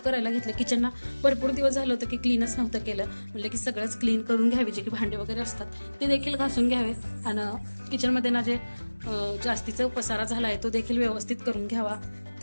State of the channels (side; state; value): both; inverted; correlation -1.00